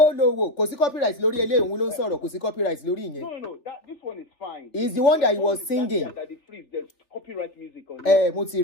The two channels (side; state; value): right; late; 3.4 ms